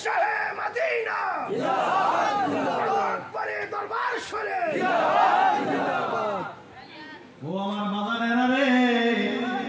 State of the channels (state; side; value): identical; both; correlation 1.00